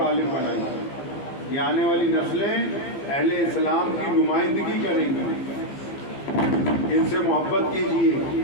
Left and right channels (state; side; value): late; right; 15 ms